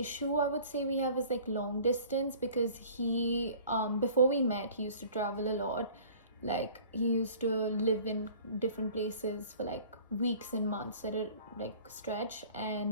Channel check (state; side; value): inverted; both; correlation -0.48